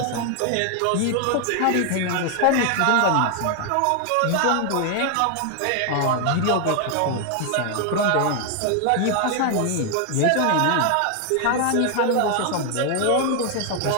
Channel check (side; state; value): both; different; correlation 0.00